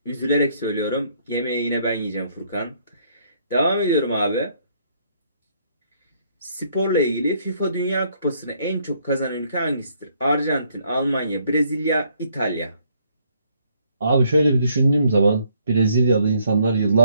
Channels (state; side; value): inverted; both; correlation -0.68